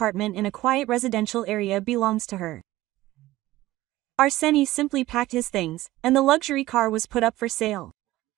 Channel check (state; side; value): quieter; left; 16.8 dB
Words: in a quiet residential area belongs to her. Arseny simply packed his things, and the luxury car was put up for sale.